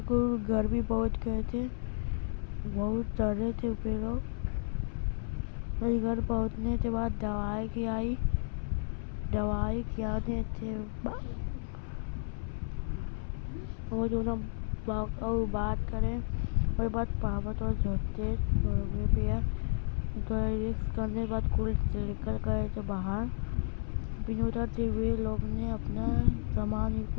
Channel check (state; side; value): silent; right; 56 dB below the other